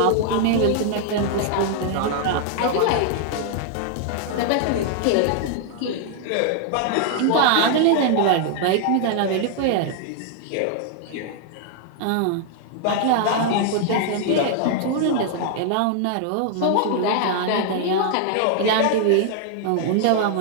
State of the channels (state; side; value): different; both; correlation 0.00